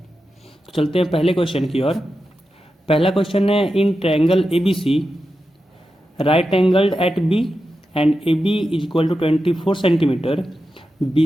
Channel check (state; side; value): normal; both; correlation 0.90